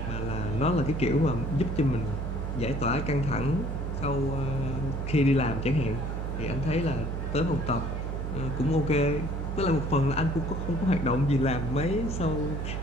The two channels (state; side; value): noise; right; hum, 3 dB below the sound